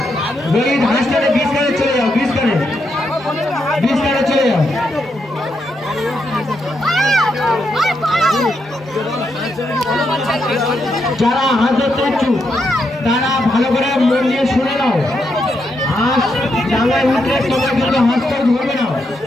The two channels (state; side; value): normal; both; correlation 0.81